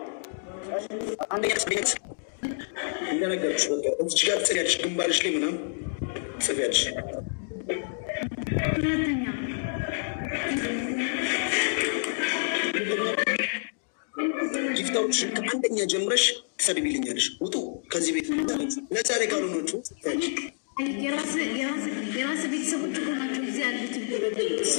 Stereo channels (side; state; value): right; silent; digital silence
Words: አንደኛ ስሜት እንደነገርኩሽ በቃ እዚህ ጋር ጽያለሽ ግንባርሽ ላይ ምናምን ጽያለሽ። ሁለተኛ ጊፍታዎች ከአንደኛ ጀምረሽ ትሰድቢልኛለሽ። ውጡ ከዚህ ቤት ነፃ ላይ ካልሆናችሁ የራስ ቤተሰቦች እኮ ናቸው እዚህ ያሉት።